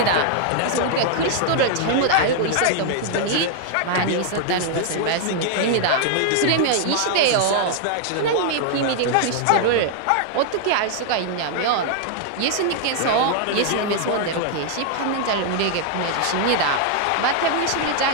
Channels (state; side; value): different; both; correlation 0.00